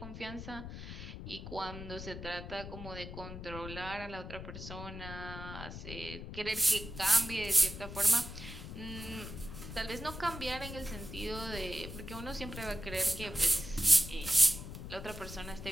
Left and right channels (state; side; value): noise; left; rumble, 9 dB below the sound